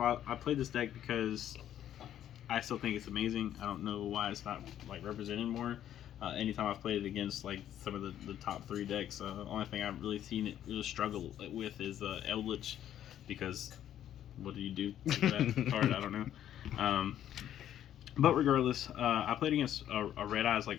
all, I played this deck because I still think it's amazing. I don't know why it's not like represented more. Anytime I've played it against like some of the top three decks, the only thing I've really seen it really struggle with is Eldritch, because what do you do to that card? I don't know. Um, but regardless, I played against a Red Eyes like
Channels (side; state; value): right; quieter; 11.0 dB